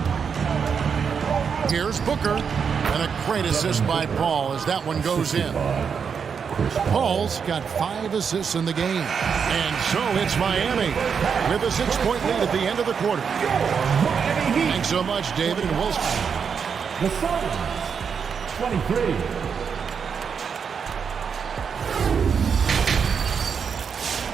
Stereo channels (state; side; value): quieter; left; 6.5 dB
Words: Here's Booker. And a great assist by Paul as that one goes in. Paul's got 5 assists in the game. And so it's Miami with a 6-point lead at the end of the quarter. Thanks so much, David and Wilson. The Suns, 23.